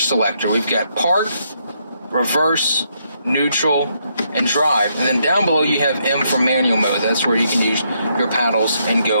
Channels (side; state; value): both; inverted; correlation -0.76